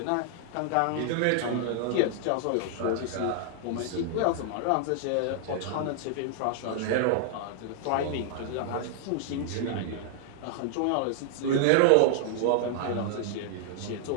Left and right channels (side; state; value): both; different; correlation 0.00